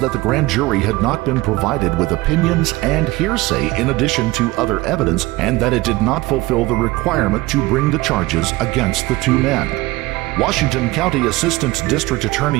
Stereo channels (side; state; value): left; quieter; 20.1 dB